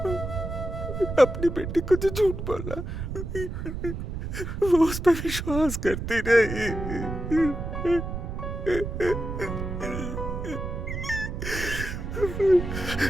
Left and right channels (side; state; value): right; noise; rumble, 5 dB below the sound